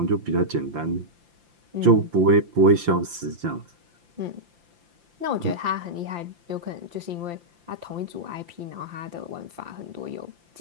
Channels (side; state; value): left; late; 5.8 ms